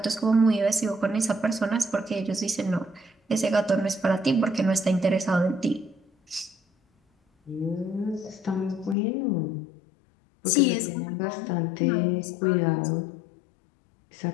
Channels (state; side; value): drops out; right; at 9.0 s